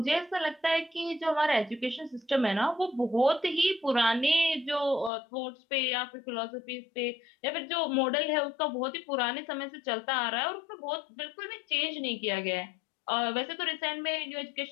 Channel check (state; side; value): drops out; right; at 5.1 s